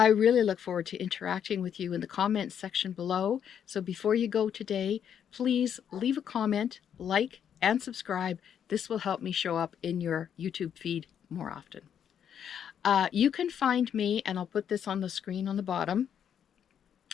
really look forward to interacting with you in the comments section below. So before you go today, please leave a comment, like, and subscribe. This will help me show up in your YouTube feed more often. You can find me, and I'll put this on the screen on the bottom,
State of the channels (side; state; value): right; quieter; 8.7 dB